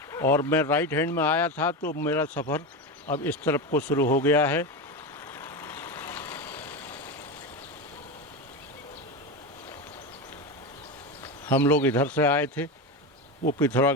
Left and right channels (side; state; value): both; normal; correlation 0.18